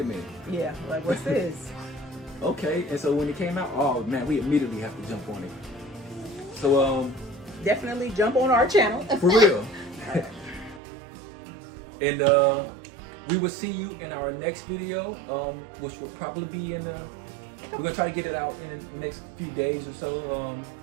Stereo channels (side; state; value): left; drops out; at 10.8 s